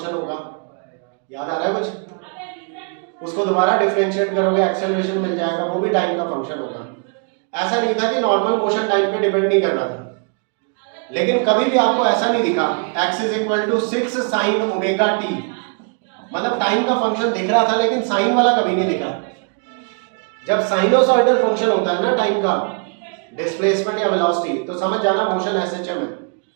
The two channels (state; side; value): quieter; left; 39.7 dB